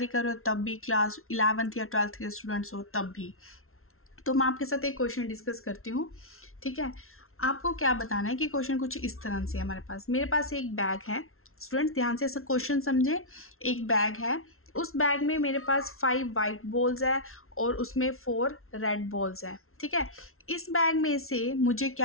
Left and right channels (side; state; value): right; late; 0.62 ms